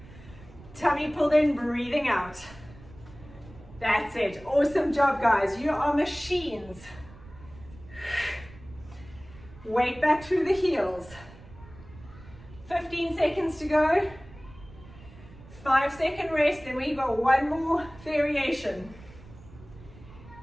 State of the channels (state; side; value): noise; right; rumble, 20 dB below the sound